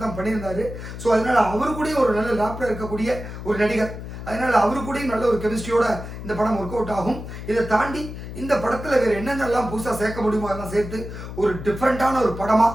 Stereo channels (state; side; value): noise; left; hum, 10 dB below the sound